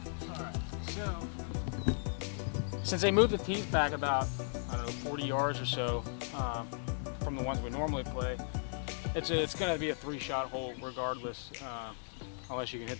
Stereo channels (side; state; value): right; silent; digital silence